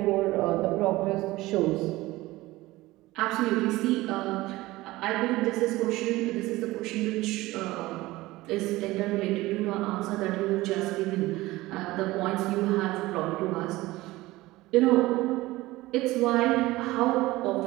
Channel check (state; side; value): quieter; left; 18.8 dB